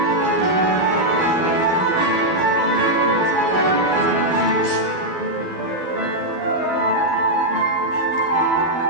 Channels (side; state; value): right; late; 12 ms